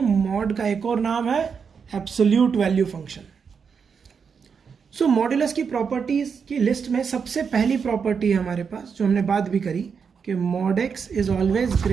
मॉड का एक और नाम है एब्सोल्यूट वैल्यू फंक्शन। सो मॉड्यूलस की प्रॉपर्टीज की लिस्ट में सबसे पहली प्रॉपर्टी है हमारे पास, जो हमने बात भी करी, कि mod x is always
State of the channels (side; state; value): left; quieter; 6.2 dB